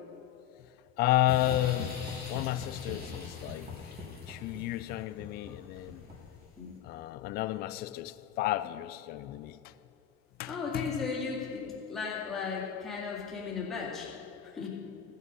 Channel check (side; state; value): right; quieter; 10.6 dB